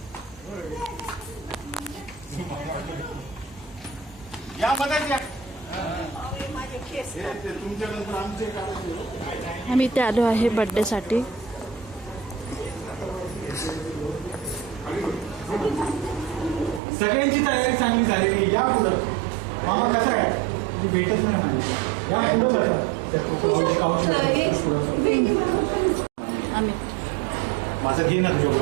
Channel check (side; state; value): left; drops out; at 16.8 s